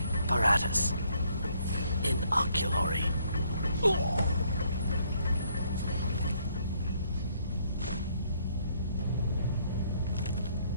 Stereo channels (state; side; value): inverted; both; correlation -0.68